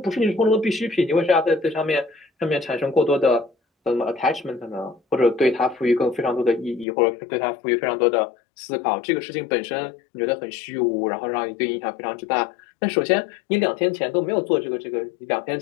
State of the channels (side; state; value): right; drops out; at 6.9 s